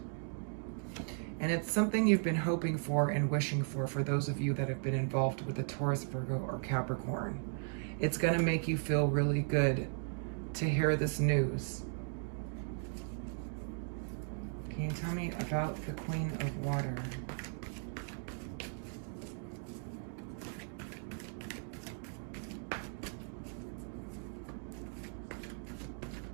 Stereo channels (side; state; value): left; silent; 53 dB below the other